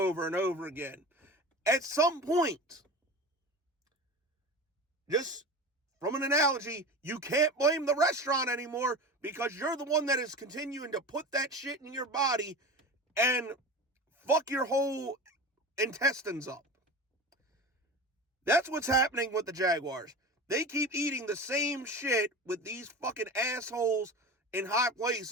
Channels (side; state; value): both; normal; correlation 0.31